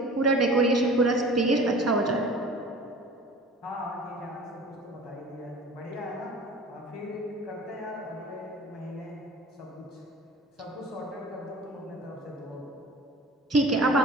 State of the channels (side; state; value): both; normal; correlation 0.42